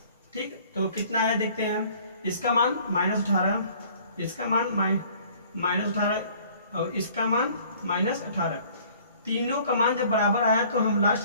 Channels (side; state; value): both; inverted; correlation -0.54